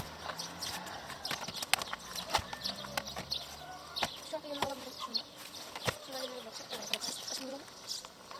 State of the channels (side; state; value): both; identical; correlation 1.00